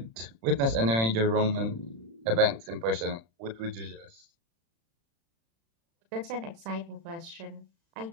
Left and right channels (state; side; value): late; left; 35 ms